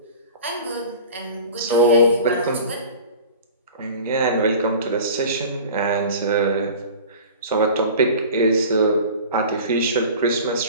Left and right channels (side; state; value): both; inverted; correlation -0.40